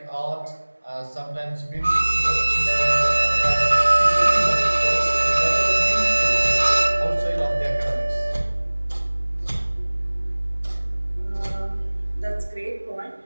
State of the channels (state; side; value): inverted; both; correlation -1.00